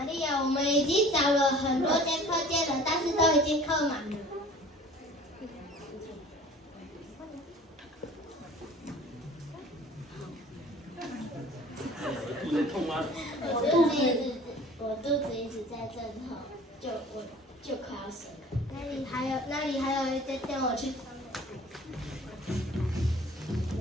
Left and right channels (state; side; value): normal; both; correlation 0.47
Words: 利亚，我们已经找了很多间客店了，但是都已经客满了。肚子痛吗？我肚子一直在阵痛，我就快要生了。那里还有一间店，我去。